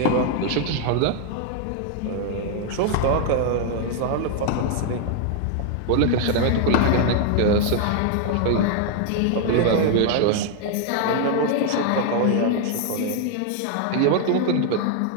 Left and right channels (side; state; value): both; different; correlation 0.00